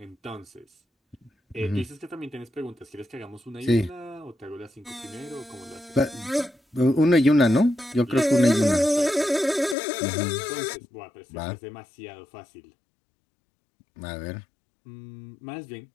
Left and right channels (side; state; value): right; drops out; at 9.8 s